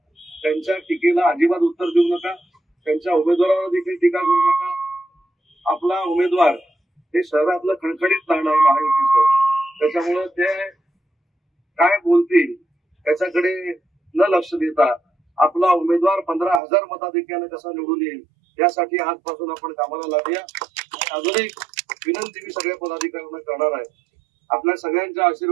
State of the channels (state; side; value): drops out; left; at 16.6 s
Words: त्यांच्या टीकेला अजिबात उत्तर देऊ नका. त्यांच्या उमेदवारावर देखील टीका करू नका. आपला उमेदवार हे शहरातलं खणखणीत नाणं आहे महायुतीचं, त्याच्यामुळं ते काय बोलतील त्याच्याकडे न लक्ष देता आपला उमेदवार 15,000 मताधिक्याने कसा निवडून येईल यासाठी आजपासून आपण कामाला लागूया. अजून एक विनंती मी सगळ्या पदाधिकाऱ्यांना करणार आहे, आपल्या सगळ्यांच्या